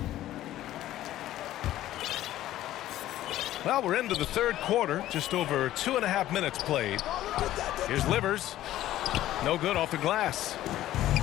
Well, we're into the third quarter. Just over 2.5 minutes played. Here's Livers. No good off the glass.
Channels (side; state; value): right; quieter; 13.9 dB